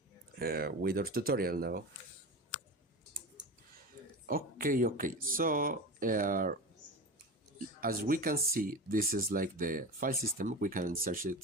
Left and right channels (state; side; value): normal; both; correlation 0.27